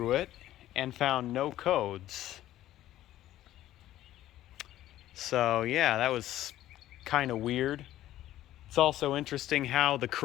it and found no codes. So yeah, that was kind of weird. It's also interesting how the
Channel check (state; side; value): quieter; right; 13.7 dB